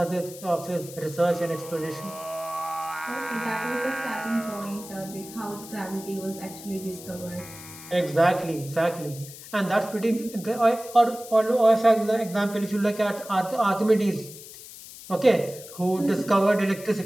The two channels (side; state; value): left; noise; hiss, 15 dB below the sound